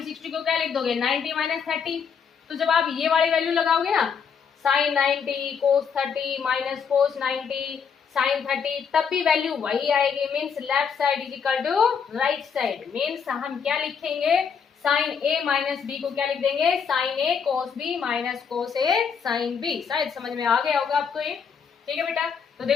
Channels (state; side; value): quieter; right; 6.6 dB